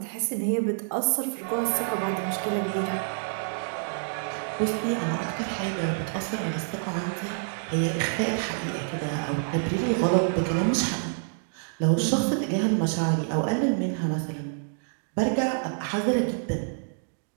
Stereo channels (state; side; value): silent; left; digital silence